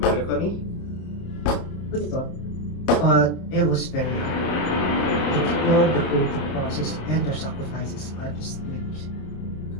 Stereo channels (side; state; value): right; late; 29 ms